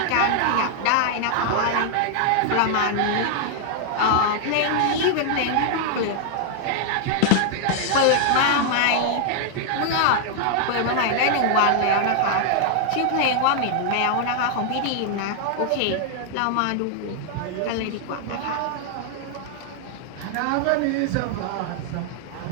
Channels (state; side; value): different; both; correlation 0.00